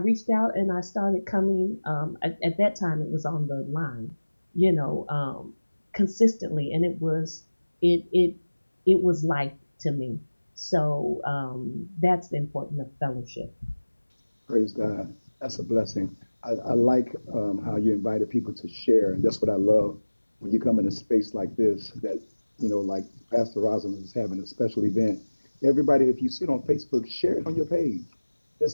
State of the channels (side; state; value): both; inverted; correlation -1.00